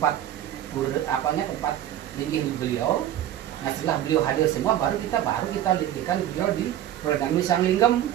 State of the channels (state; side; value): quieter; left; 11.9 dB